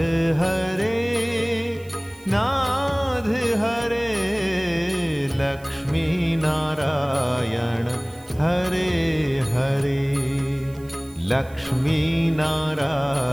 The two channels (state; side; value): noise; right; hiss, 25 dB below the sound